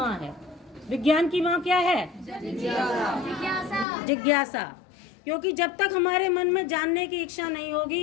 है। विज्ञान की माँ क्या है? जिज्ञासा। क्योंकि जब तक हमारे मन में जानने की इच्छा नहीं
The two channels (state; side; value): drops out; right; at 3.9 s